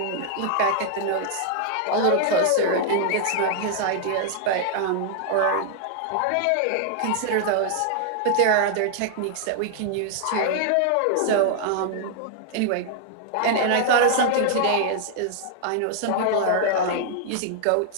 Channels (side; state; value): both; different; correlation 0.00